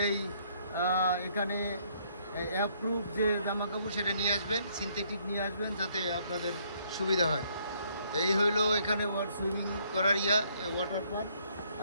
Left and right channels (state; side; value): inverted; both; correlation -0.67